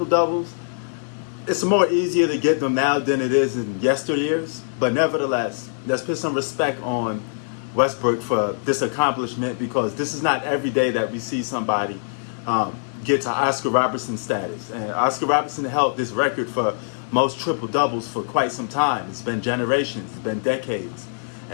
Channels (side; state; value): right; silent; digital silence